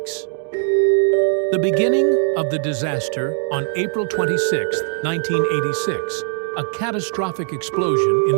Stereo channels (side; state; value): left; silent; 66 dB below the other